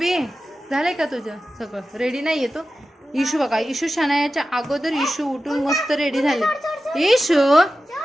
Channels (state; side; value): normal; both; correlation 0.94